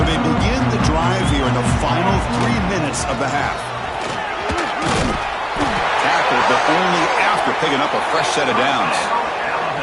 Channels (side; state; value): both; identical; correlation 1.00